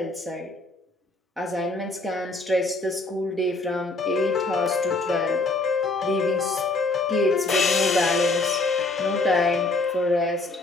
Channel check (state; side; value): quieter; right; 3.2 dB